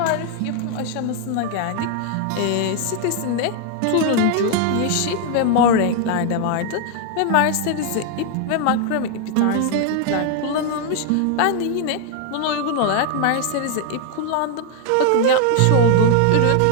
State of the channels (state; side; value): different; both; correlation 0.00